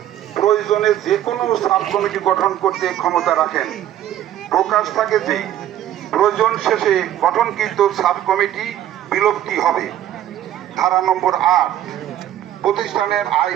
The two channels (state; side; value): quieter; left; 11.9 dB